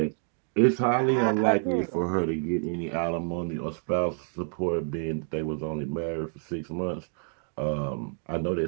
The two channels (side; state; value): left; silent; 57 dB below the other